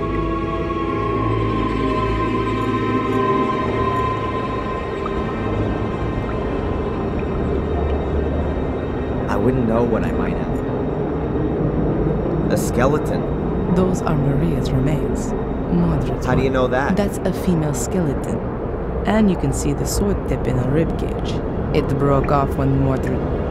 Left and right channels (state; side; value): identical; both; correlation 1.00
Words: I wouldn't know what I might have. A skeleton. Those are Maria's remains. Mordred's. How do you know that? That's a female skeleton. And you can see the sword tip in her ribcage. It broke off when Mordred...